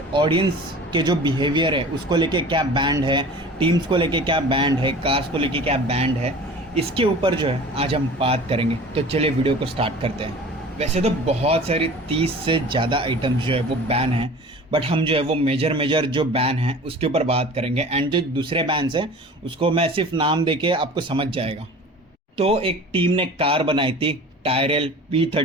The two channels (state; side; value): normal; both; correlation 0.41